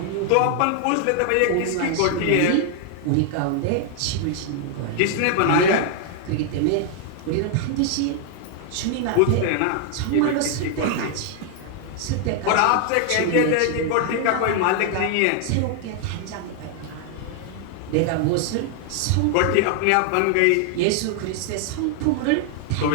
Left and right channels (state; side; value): different; both; correlation 0.00